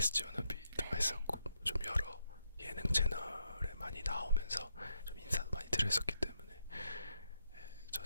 워너비도 했었고 좀 여러 예능 채널에 많이 나오면서 좀 인사도 많이 드렸었기 때문에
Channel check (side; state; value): both; inverted; correlation -0.79